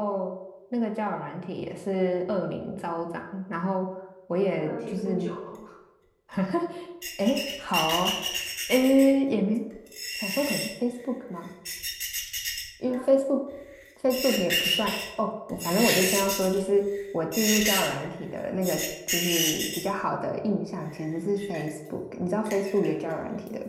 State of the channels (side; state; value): both; identical; correlation 1.00